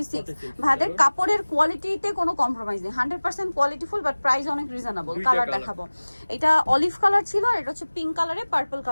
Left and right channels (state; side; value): inverted; both; correlation -1.00